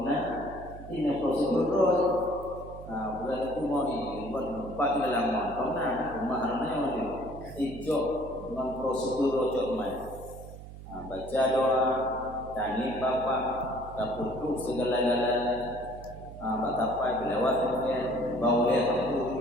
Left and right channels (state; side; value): noise; right; hum, 14 dB below the sound